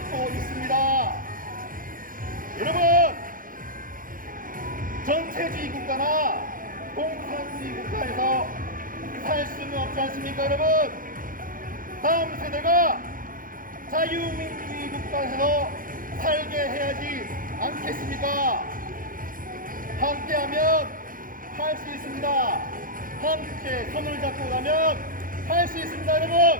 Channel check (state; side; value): late; left; 0.40 ms